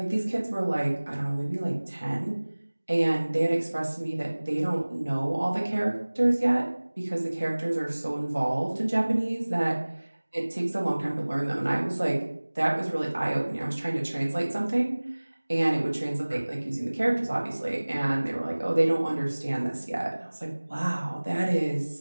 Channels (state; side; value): inverted; both; correlation -1.00